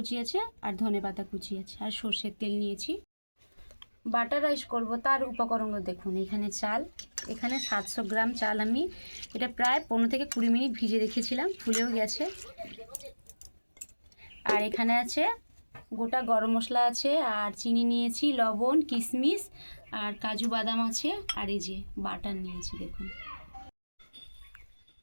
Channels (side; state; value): both; inverted; correlation -1.00